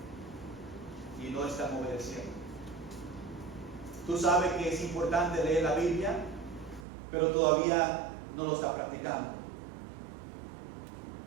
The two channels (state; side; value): drops out; left; at 6.9 s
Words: Y no están obedeciendo. Tú sabes que es importante leer la Biblia, pero todavía no lo está practicando.